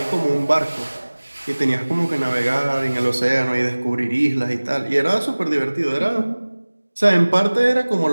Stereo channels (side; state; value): both; inverted; correlation -1.00